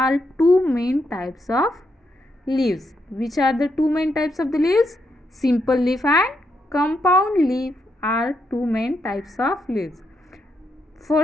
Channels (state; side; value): normal; both; correlation 0.80